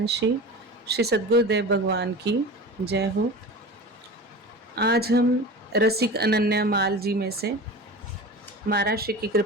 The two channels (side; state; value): both; normal; correlation 0.34